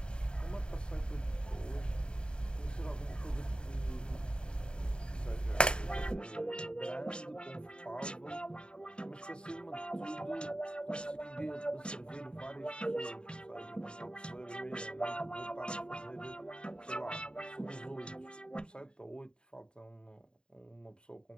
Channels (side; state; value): right; late; 0.051 ms